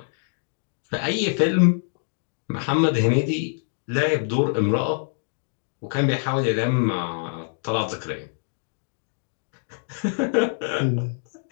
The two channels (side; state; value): right; silent; digital silence